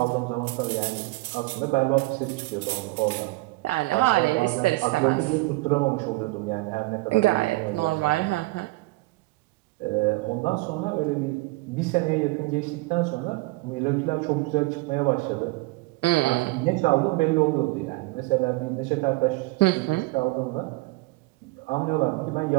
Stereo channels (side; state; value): left; quieter; 22.3 dB